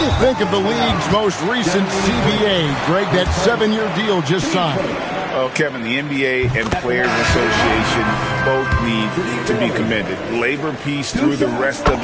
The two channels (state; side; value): identical; both; correlation 1.00